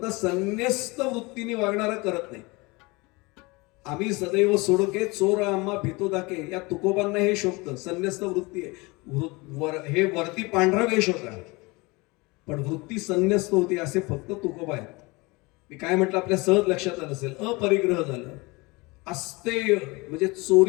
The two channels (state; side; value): quieter; right; 25.1 dB